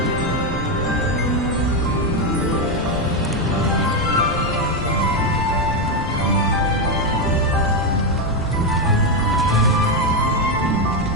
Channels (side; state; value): both; normal; correlation 0.07